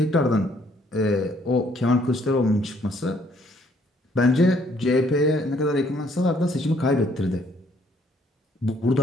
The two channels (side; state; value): both; normal; correlation 0.66